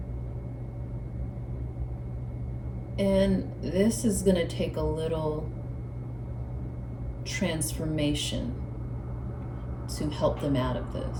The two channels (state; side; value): identical; both; correlation 1.00